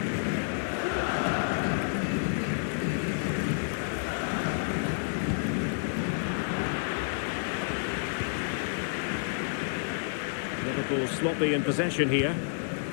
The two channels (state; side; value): silent; right; digital silence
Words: Liverpool sloppy in possession here.